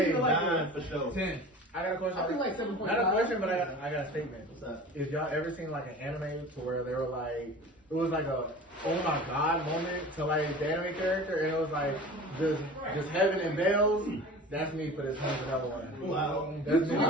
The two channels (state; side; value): normal; both; correlation 0.39